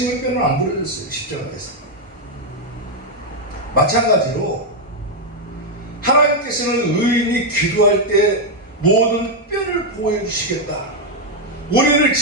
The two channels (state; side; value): normal; both; correlation 0.00